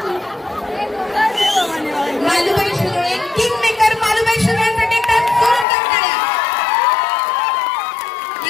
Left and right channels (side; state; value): right; drops out; at 5.7 s